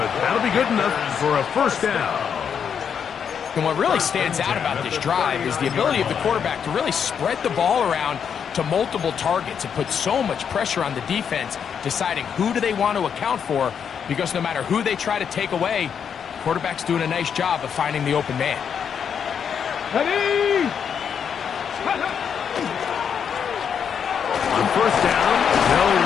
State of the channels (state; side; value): quieter; right; 7.5 dB